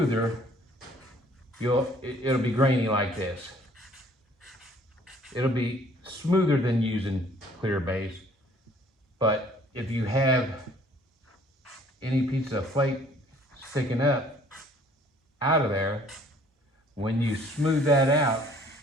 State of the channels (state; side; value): normal; both; correlation 0.57